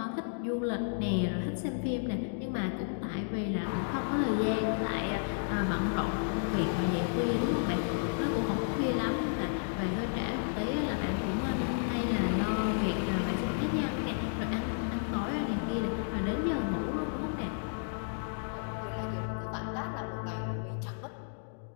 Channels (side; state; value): right; silent; digital silence